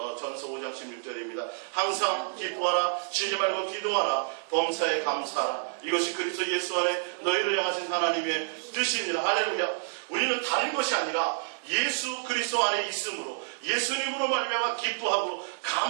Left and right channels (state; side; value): silent; left; digital silence